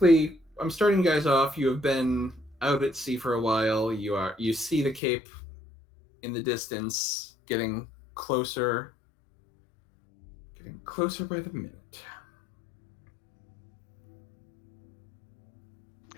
I'm starting you guys off. You have been out at sea for a while. You see the Cape in the distance, getting closer by the minute.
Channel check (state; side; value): drops out; right; at 5.0 s